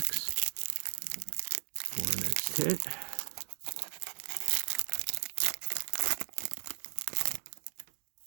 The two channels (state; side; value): silent; left; digital silence